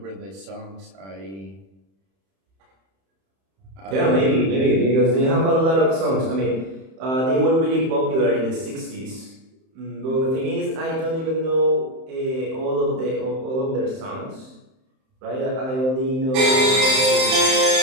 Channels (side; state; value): left; late; 31 ms